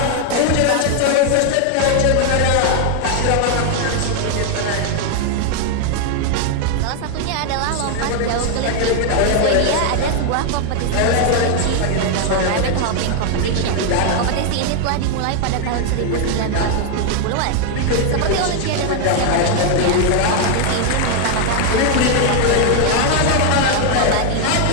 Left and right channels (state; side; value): different; both; correlation 0.00